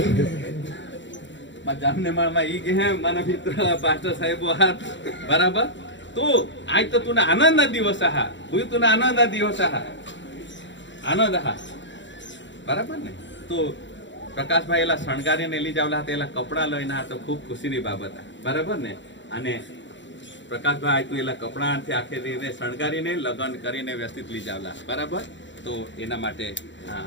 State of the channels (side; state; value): right; late; 0.54 ms